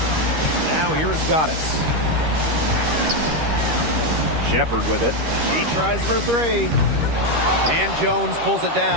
Now here is Goddess. Shepard with it. She tries for three. And Jones pulls it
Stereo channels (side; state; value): left; late; 13 ms